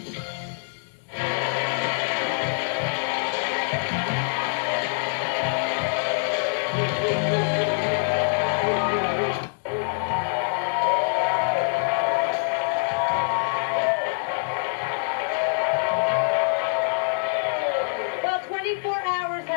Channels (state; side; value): silent; right; digital silence